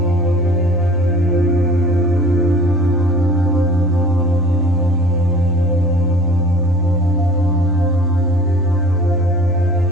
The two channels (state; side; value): normal; both; correlation 0.45